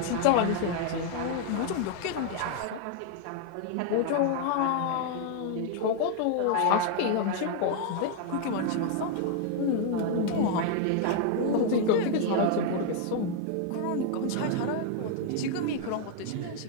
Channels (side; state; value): both; different; correlation 0.00